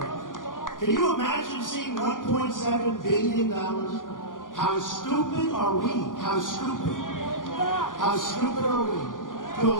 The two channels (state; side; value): late; right; 0.89 ms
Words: Can you imagine seeing $1.7 billion? How stupid are we? How stupid? How stupid are we to